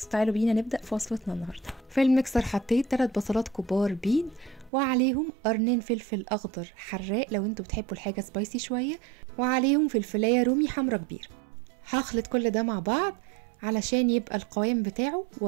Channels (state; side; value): drops out; left; at 4.7 s